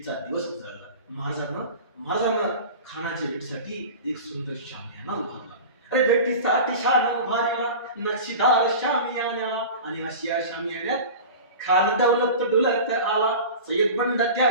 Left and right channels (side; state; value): both; inverted; correlation -0.34